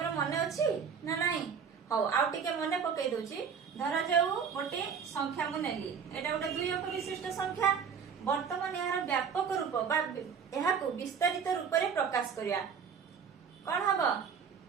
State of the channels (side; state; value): left; quieter; 6.7 dB